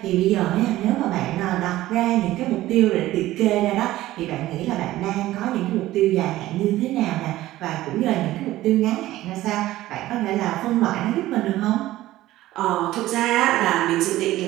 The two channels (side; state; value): left; quieter; 15.8 dB